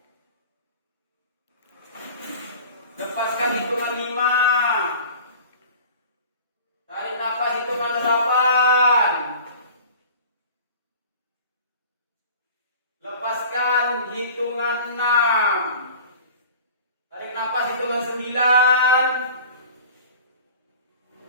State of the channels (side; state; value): both; inverted; correlation -0.42